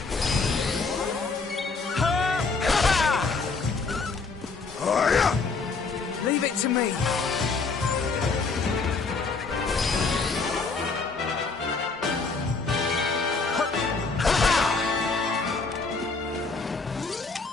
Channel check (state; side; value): quieter; right; 4.3 dB